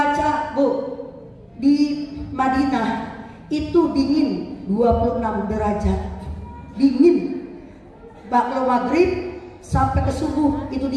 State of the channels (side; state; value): both; identical; correlation 1.00